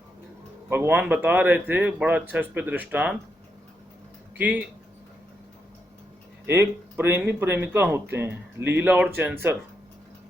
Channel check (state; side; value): normal; both; correlation 0.82